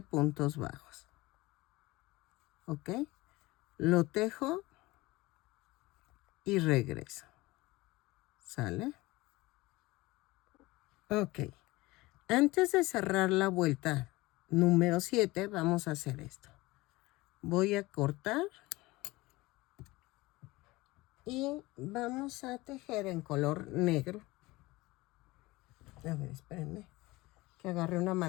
bajos. ¿Ok? Lo tejo y regreso. ¿Sale? Ok. Antes de cerrar la vuelta número 7, vamos a hacer esto. Voy a cortar y vamos a tejer en color negro. A ver, espérenme, que agarré una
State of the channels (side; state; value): right; quieter; 20.8 dB